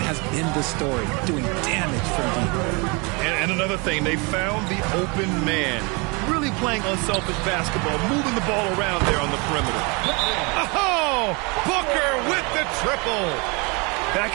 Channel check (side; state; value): left; quieter; 29.8 dB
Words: has been the story, doing damage from deep. And another thing, they found the open man. Really playing unselfish basketball, moving the ball around there on the perimeter. Oh, Booker with the triple.